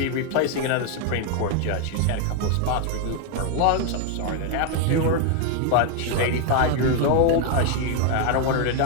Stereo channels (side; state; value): both; different; correlation 0.01